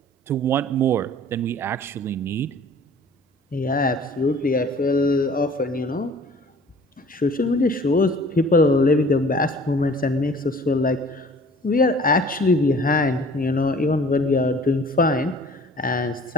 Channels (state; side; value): normal; both; correlation 0.49